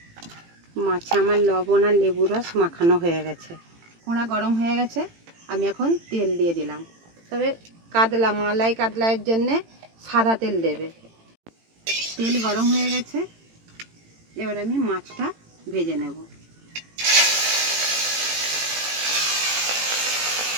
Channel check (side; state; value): left; late; 18 ms